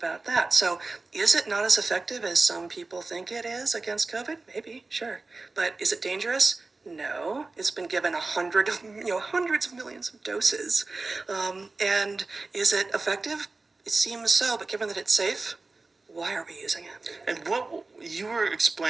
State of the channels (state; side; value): quieter; left; 3.6 dB